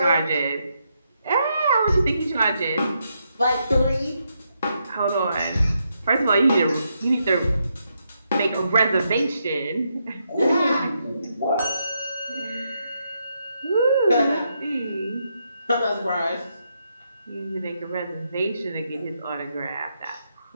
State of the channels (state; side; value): inverted; both; correlation -0.80